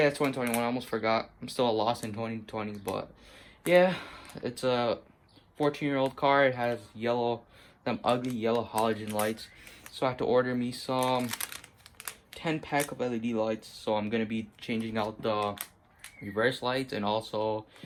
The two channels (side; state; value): both; identical; correlation 1.00